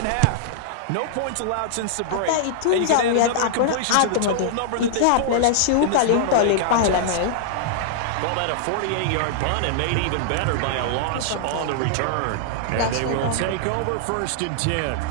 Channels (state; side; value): different; both; correlation -0.01